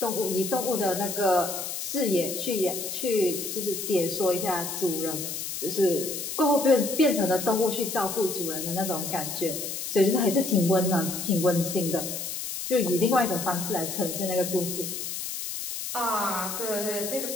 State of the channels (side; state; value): left; noise; hiss, 5 dB below the sound